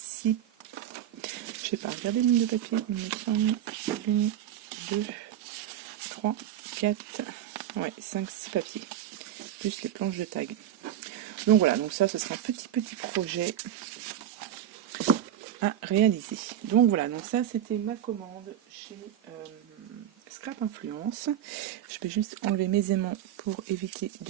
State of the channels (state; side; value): quieter; left; 11.0 dB